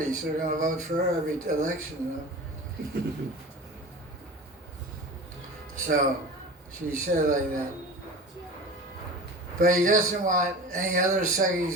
so they're going to vote for her every election. So she said like that. But he doesn't want any other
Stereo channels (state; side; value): normal; both; correlation 0.34